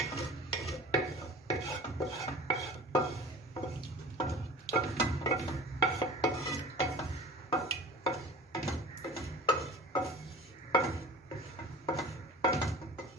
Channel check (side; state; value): both; normal; correlation 0.40